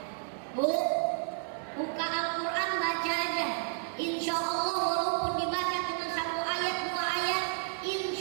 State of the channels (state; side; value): silent; left; 57 dB below the other